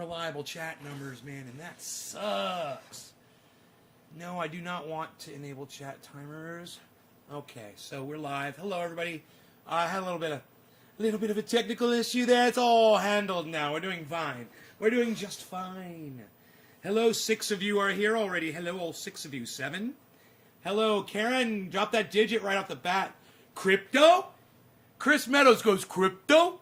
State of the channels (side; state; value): both; identical; correlation 1.00